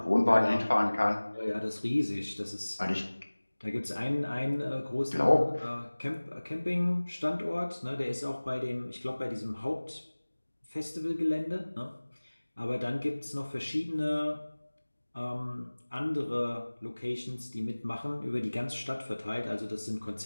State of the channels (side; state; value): both; inverted; correlation -1.00